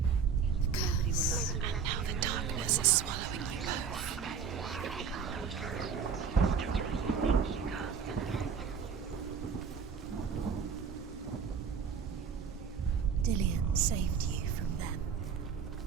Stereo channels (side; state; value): left; quieter; 6.3 dB